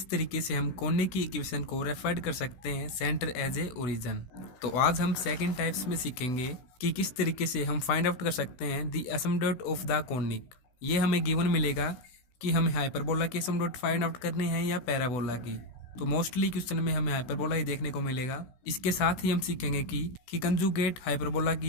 तरीके से हम कोने की इक्वेशन को रेफर कर सकते हैं सेंटर एज ए ओरिजिन। तो आज हम सेकंड टाइप्स में सीखेंगे कि किस तरीके से हम फाइंड आउट कर सकते हैं the asymptote of the conic. ये हमें गिवन मिलेगा कि हमें हाइपरबोला की एसिम्पटोट फाइंड आउट करनी है या पैराबोला की। तो मोस्टली क्वेश्चन में हमें हाइपरबोला ही देखने को मिलेगा। इसके साथ ही हम सीखेंगे कि कंजुगेट हाइपरबोला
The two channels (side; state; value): right; late; 16 ms